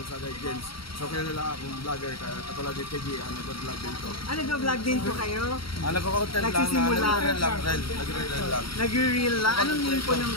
James. So kilala akong vlogger, katulad ni TG, nag-vlog din to. Nag-vlog din po kayo? Nagko-content lang, Nagsisimula. nagre-reel lang. Nag-reel lang? Anong name po ng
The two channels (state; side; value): late; right; 0.74 ms